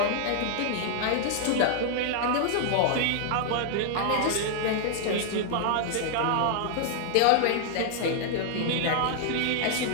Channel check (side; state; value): both; different; correlation -0.01